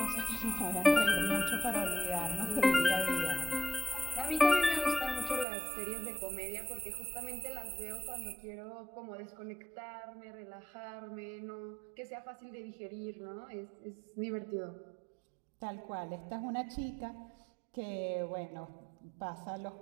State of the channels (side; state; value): left; drops out; at 5.5 s